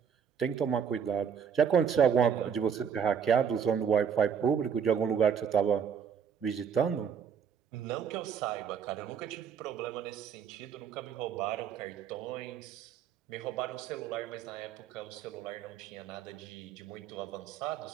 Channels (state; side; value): quieter; left; 7.5 dB